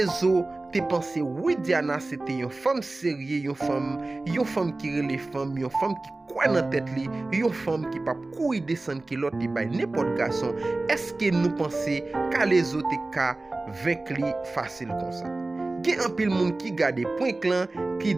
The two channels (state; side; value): quieter; left; 3.1 dB